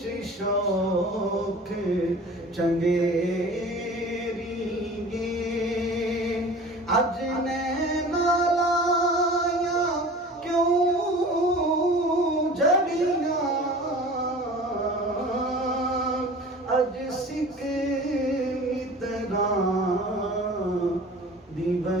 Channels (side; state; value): both; normal; correlation 0.41